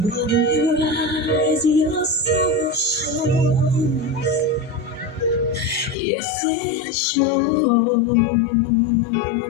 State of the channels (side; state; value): right; drops out; at 6.0 s